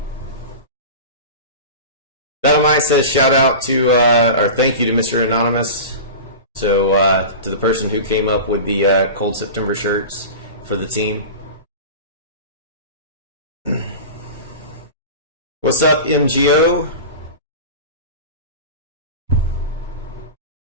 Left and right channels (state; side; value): inverted; both; correlation -0.31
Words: Dynamite says shout out to, or thank you to Mr. Anonymous. So, to the person who came up with the Cold September shirts for the team. What's up, MGO?